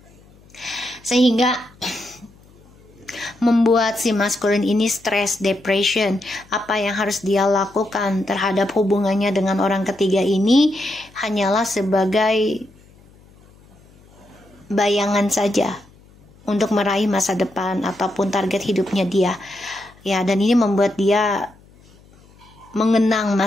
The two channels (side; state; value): left; noise; hum, 27 dB below the sound